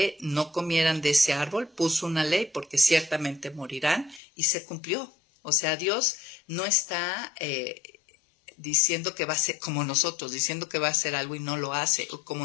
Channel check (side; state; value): right; drops out; at 4.2 s